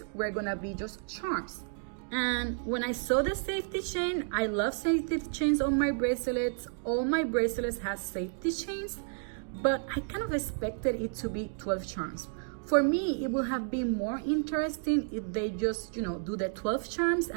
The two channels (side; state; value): left; silent; 57 dB below the other